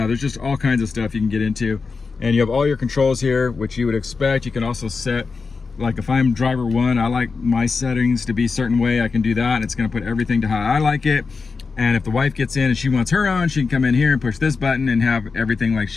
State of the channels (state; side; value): quieter; right; 4.7 dB